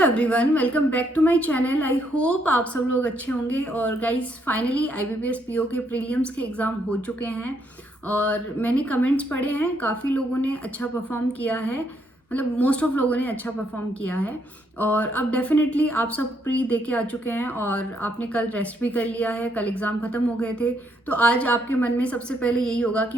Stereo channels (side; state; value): both; normal; correlation 0.73